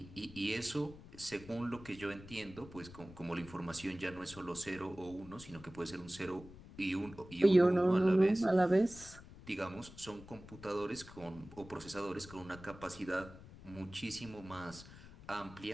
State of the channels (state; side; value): noise; left; rumble, 17 dB below the sound